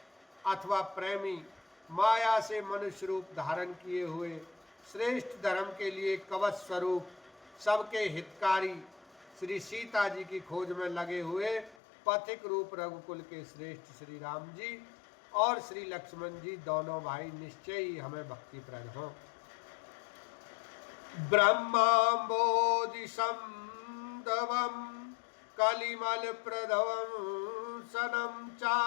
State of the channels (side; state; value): right; drops out; at 11.8 s